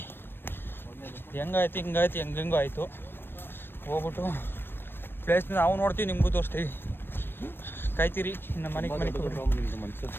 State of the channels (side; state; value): right; late; 0.099 ms